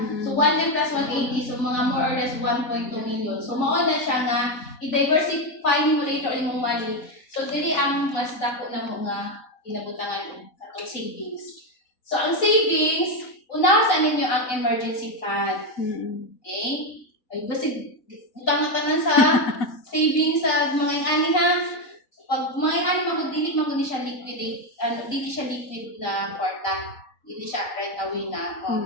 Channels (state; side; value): late; right; 4.0 ms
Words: So 1M plus 180, so mga more or less 1.2 million. So mao na siya nga i-diversify mo later imong money. So dili ang mas dako na mo nga inabutangan atong savings. So ang savings, unawasan ninyo ang emergency fund. Okay? Ay kasi utang na tanan sa savings sa mga ani ha. Pag mga magdili maguni siya liquidate, dili siya liquid na kwarta. Hindi siya right away na